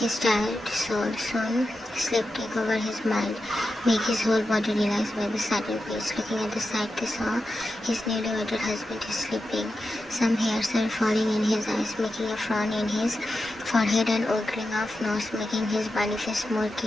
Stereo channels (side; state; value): both; normal; correlation 0.90